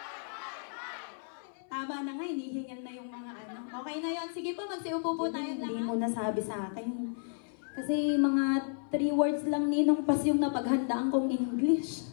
hi, hi! Tama na nga, hinihingal na yung mga ano. Okay na yan. Sige po, magsiupo po tayo na. Hindi mo nasabi sa akin. Kasi mga 3 words lang ninong pas yung napaghandaan kong English.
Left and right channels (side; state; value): right; silent; 56 dB below the other